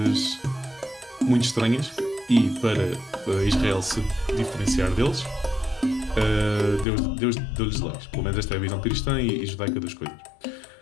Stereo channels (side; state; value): right; drops out; at 6.9 s